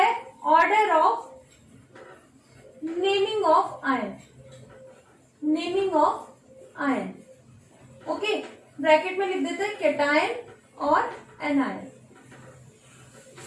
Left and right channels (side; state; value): both; identical; correlation 1.00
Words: order of naming of ion. Naming of ion, okay, bracket में लिख देते हैं कैटायन और एनायन।